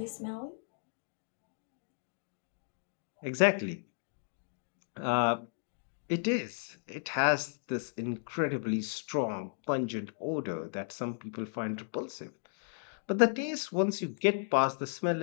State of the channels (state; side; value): silent; right; digital silence